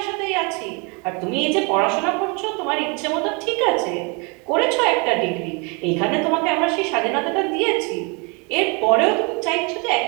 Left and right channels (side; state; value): left; quieter; 31.7 dB